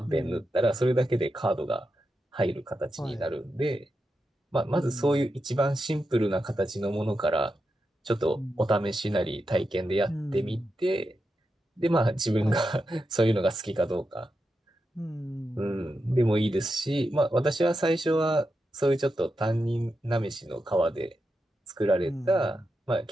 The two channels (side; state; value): both; normal; correlation 0.88